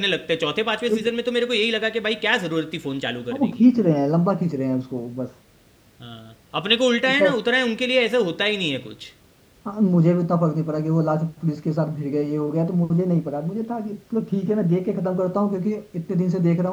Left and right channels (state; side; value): identical; both; correlation 1.00